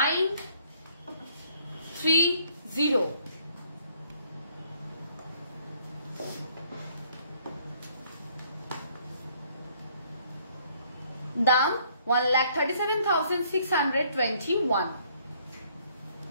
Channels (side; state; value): both; inverted; correlation -0.64